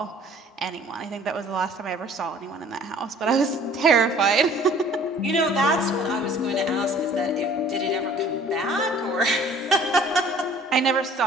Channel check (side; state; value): both; normal; correlation 0.52